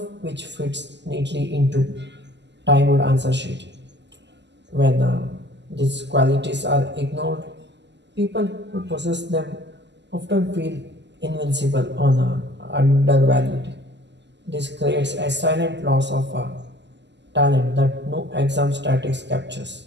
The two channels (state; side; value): late; left; 0.51 ms